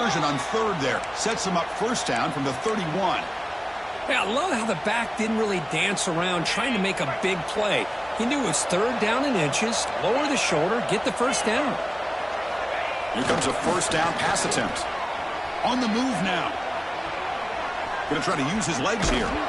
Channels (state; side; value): identical; both; correlation 1.00